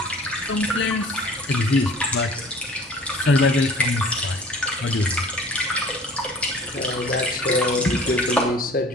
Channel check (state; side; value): normal; both; correlation 0.47